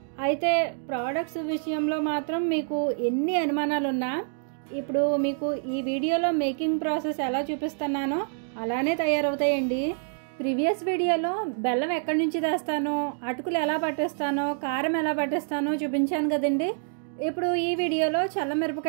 అయితే ప్రోడక్ట్స్ విషయంలో మాత్రం మీకు ఎన్ని అనుమానాలు ఉన్నా ఇప్పుడు మీకు ఈ వీడియోలో మేకింగ్ ప్రాసెస్ ఎలా చూపిస్తున్నానో అలానే తయారవుతాయండి. ప్రీవియస్ వీడియోలో బెల్లం ఎక్కడి నుంచి తెస్తానో, అటుకులు ఎలా పట్టేస్తానో, కారం ఎలా పట్టేస్తానో చూపించాను కదండి. ఇప్పుడు ఈ వీడియోలో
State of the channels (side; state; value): left; silent; digital silence